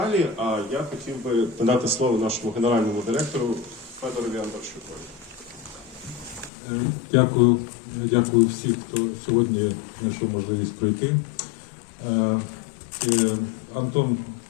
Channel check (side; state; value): right; drops out; at 6.5 s